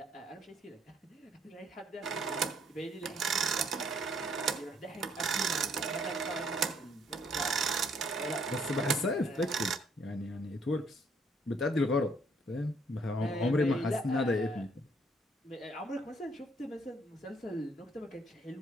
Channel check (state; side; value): normal; both; correlation 0.66